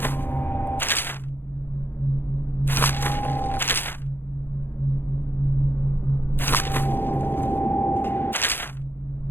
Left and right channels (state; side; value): late; right; 0.10 ms